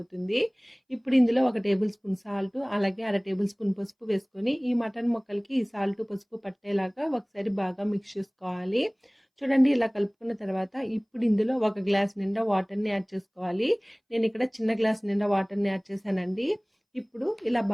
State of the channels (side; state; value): both; identical; correlation 1.00